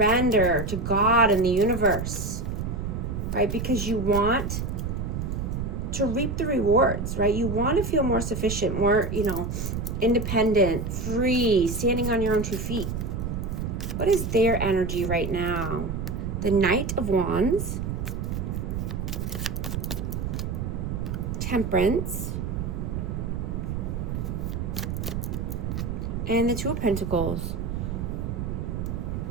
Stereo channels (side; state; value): right; noise; rumble, 3 dB below the sound